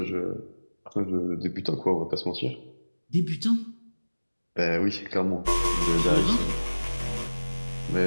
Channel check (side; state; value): both; inverted; correlation -1.00